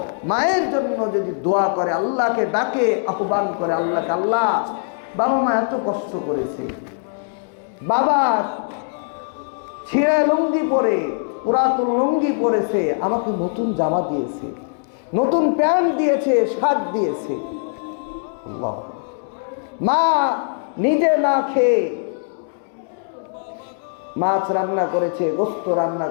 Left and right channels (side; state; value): right; silent; digital silence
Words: মায়ের জন্য যদি দোয়া করে, আল্লাহকে ডাকে, আহ্বান করে আল্লাহকে, আল্লাহ বাবা মা এত কষ্ট করেছে, বাবা ছেঁড়া লুঙ্গি পরে, পুরাতন লুঙ্গি পরেছে, আমাকে নতুন জামা দিয়েছে, নতুন প্যান্ট দিয়েছে, শার্ট দিয়েছে। আল্লাহ। মা নিজে না খেয়ে মাছ রান্না করেছে, গোস্ত রান্না